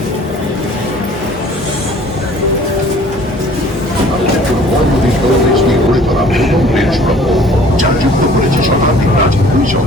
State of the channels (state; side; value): normal; both; correlation 0.52